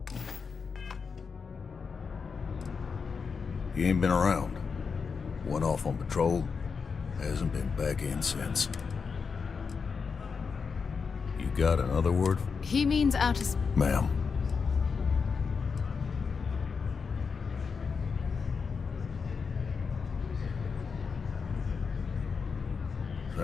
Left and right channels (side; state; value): right; quieter; 5.5 dB